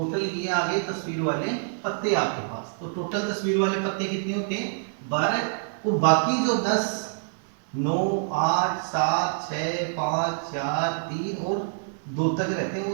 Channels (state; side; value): silent; left; digital silence